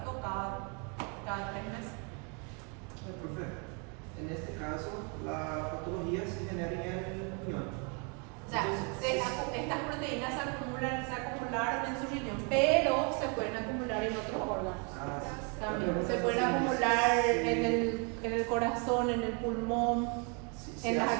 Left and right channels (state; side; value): quieter; left; 35.7 dB